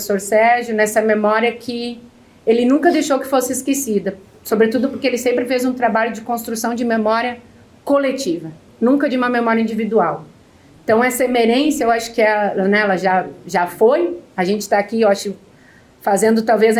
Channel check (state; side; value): identical; both; correlation 1.00